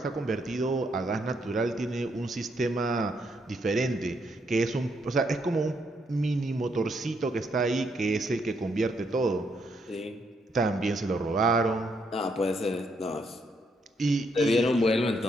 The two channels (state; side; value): normal; both; correlation 0.75